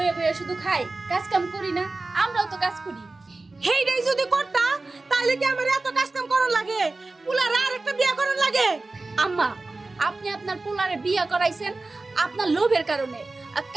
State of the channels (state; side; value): quieter; left; 3.3 dB